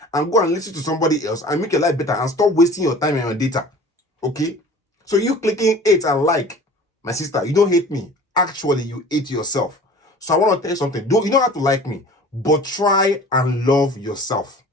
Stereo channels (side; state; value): both; normal; correlation 0.44